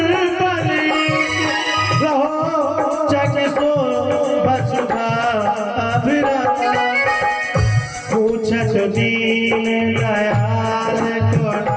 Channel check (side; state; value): both; identical; correlation 1.00